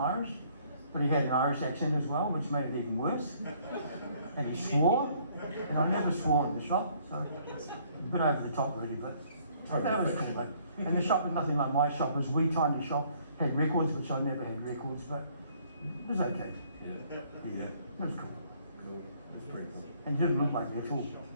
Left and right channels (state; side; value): inverted; both; correlation -0.62